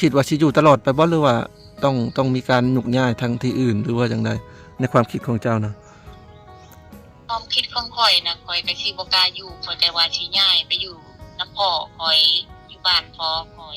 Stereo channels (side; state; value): both; identical; correlation 1.00